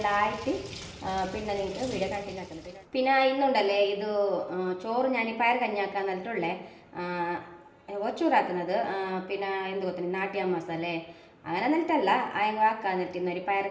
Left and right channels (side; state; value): both; identical; correlation 1.00